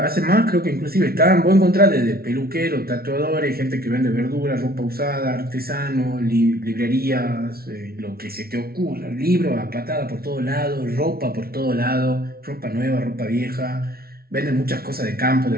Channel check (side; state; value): left; late; 0.44 ms